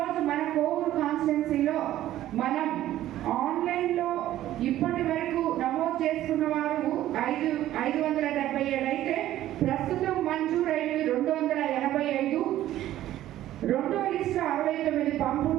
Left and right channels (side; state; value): left; quieter; 13.5 dB